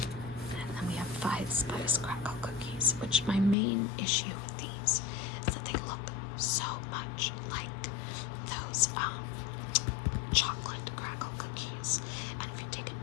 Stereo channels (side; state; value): right; drops out; at 3.6 s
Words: then we have 5 spice crackle cookies, which my main issue with these is that they look so much like those chocolate crackle cookies. And if you take a